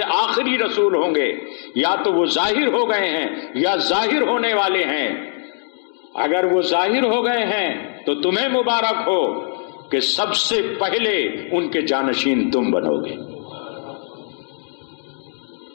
آخری رسول ہوں گے یا تو وہ ظاہر ہو گئے ہیں یا ظاہر ہونے والے ہیں۔ اگر وہ ظاہر ہو گئے ہیں تو تمہیں مبارک ہو کہ سب سے پہلے ان کے جانشین تم بنو گے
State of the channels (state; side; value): silent; right; 65 dB below the other